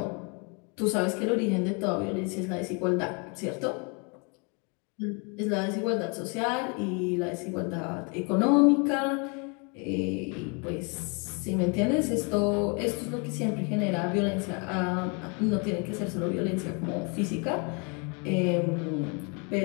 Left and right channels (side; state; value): right; quieter; 34.0 dB